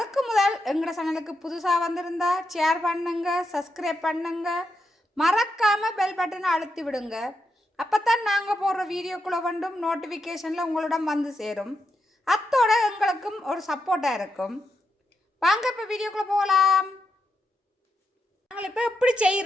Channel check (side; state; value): both; normal; correlation 0.84